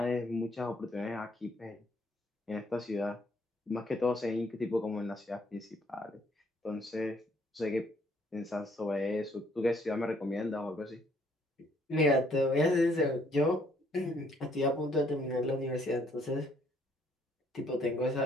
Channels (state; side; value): normal; both; correlation 0.66